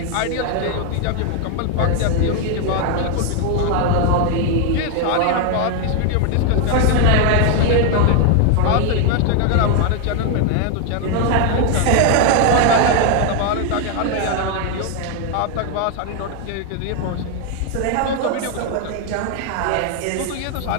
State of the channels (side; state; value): both; different; correlation 0.01